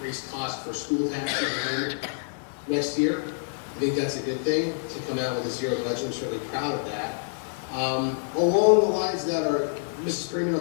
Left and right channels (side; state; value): right; silent; digital silence